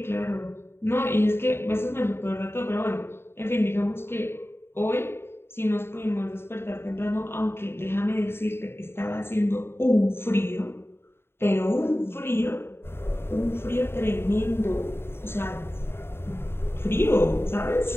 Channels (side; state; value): right; late; 0.11 ms